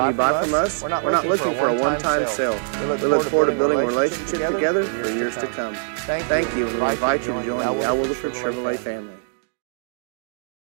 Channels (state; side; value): silent; left; digital silence